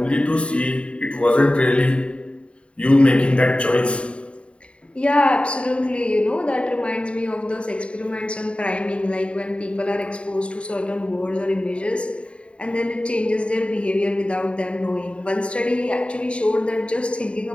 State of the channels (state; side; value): late; right; 0.059 ms